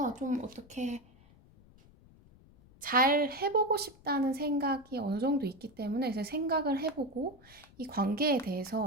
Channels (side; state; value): left; noise; rumble, 26 dB below the sound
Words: 좀 어떻게 잘 해보고 싶다는 생각이 어느 정도 있기 때문에 그래서 생각을 해보고 이 관계에